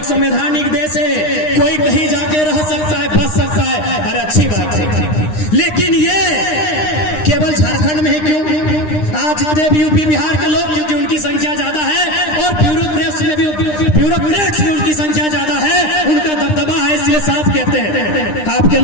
संवैधानिक देश है, कोई कहीं जाके रह सकता है, बच सकता है, अरे अच्छी बात है, लेकिन ये केवल झारखंड में ही क्यों? आज जितने भी यूपी बिहार के लोग, क्योंकि उनकी संख्या ज्यादा है और ब्यूरोक्रेट्स में उनकी संख्या ज्यादा है, उनका दबदबा है, इसलिए साफ कहते हैं। आपके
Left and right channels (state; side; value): late; right; 9.8 ms